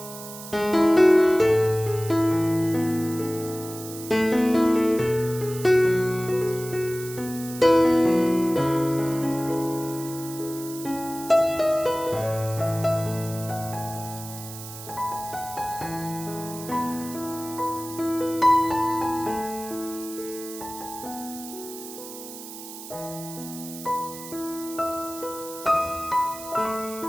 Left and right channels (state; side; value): noise; right; hiss, 13 dB below the sound